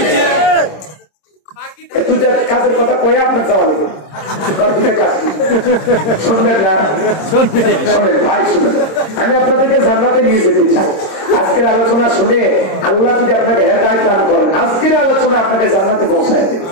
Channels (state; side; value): late; right; 26 ms